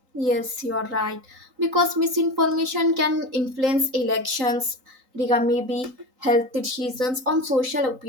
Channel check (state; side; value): late; left; 4.0 ms